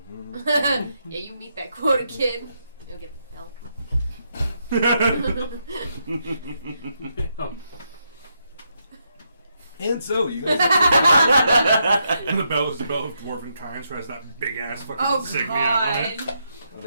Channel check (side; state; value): both; inverted; correlation -0.80